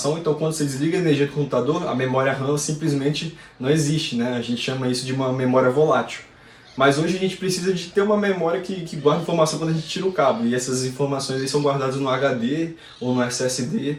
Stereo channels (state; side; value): identical; both; correlation 1.00